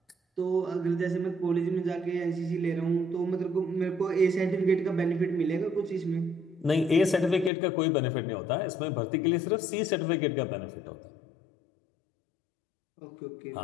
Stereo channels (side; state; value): right; drops out; at 7.5 s